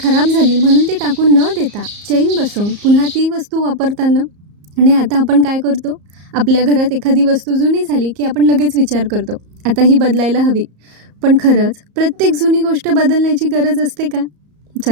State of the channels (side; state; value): left; late; 34 ms